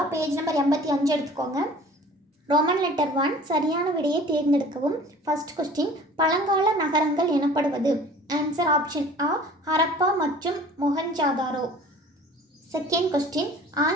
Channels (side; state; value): both; normal; correlation 0.46